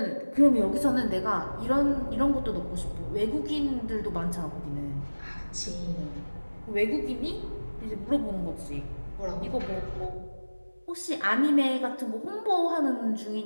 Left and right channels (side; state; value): both; inverted; correlation -1.00